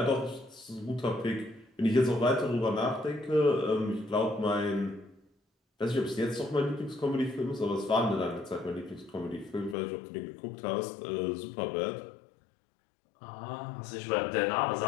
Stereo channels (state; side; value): drops out; right; at 9.8 s